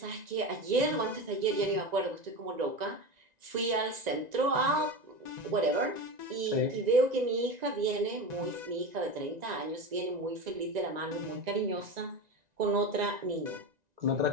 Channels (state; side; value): late; left; 1.9 ms